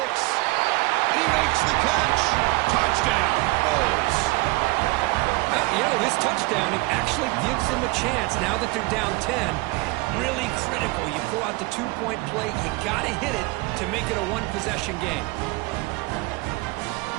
he makes the catch. Touchdown. Bulls. You know, this touchdown, it actually gives them a chance now that they're down 10. Really critical. You pull out the 2-point play. You got to hit it to make it a 1-possession game.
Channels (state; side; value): quieter; left; 23.7 dB